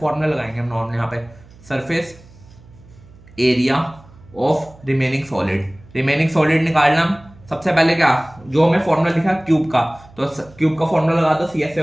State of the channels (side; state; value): right; noise; hum, 24 dB below the sound